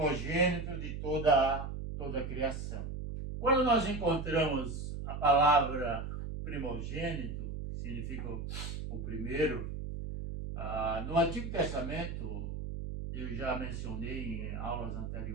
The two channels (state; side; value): noise; right; hum, 5 dB below the sound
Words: de toda a criação. Quando nós encontramos a palavra primogênito, que significa o primeiro, no Antigo Testamento, eu já mencionei em aulas